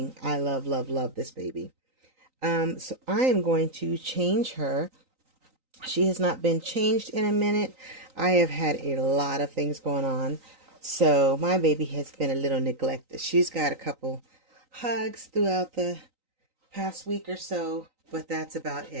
I love, love, love this baby. So I am going to change her. She has not been changed in a minute. I have had a lot of things going on. So my baby has been a little neglected. She's got a couple hugs throughout the past week or so, but that's about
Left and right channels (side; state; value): left; late; 3.9 ms